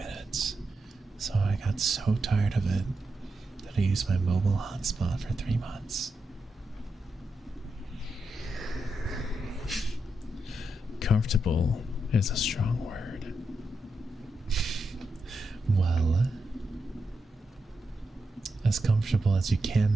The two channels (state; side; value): normal; both; correlation 0.86